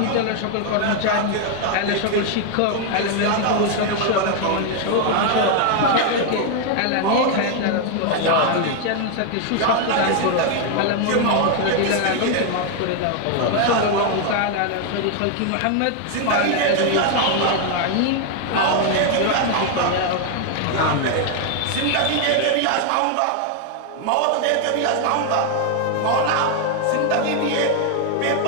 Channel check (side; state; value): both; different; correlation 0.00